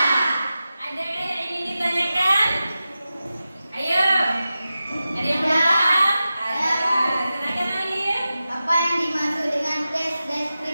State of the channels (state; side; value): inverted; both; correlation -0.93